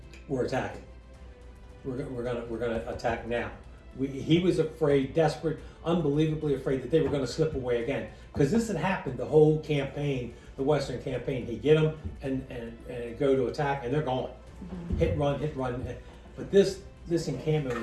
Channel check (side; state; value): both; identical; correlation 1.00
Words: we're attacking. We're gonna attack now. He was afraid, desperate, unbelievably afraid that they were going to slip away again, because this had happened the whole campaign, the Western campaign. He'd get them and go to attack, and they're gone. Mm-hmm. Hit run. But this encampment